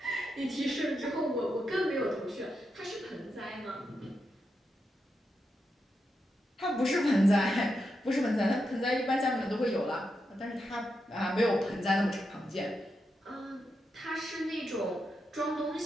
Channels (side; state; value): both; normal; correlation 0.85